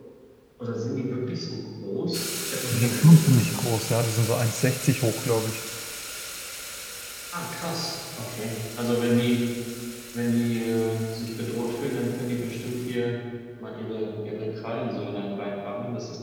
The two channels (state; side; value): identical; both; correlation 1.00